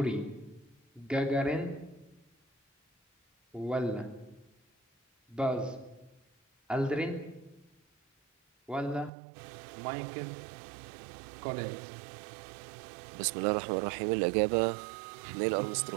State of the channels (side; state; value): left; drops out; at 9.1 s